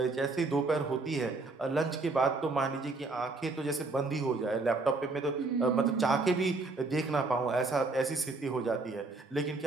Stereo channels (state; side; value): quieter; left; 3.5 dB